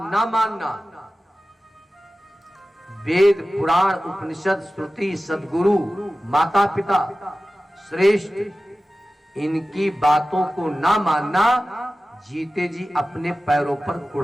ना मानना, वेद पुराण उपनिषद श्रुति सद्गुरु माता पिता श्रेष्ठ, इनकी बातों को ना मानना, जीते जी अपने पैरों पर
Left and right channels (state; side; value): normal; both; correlation 0.96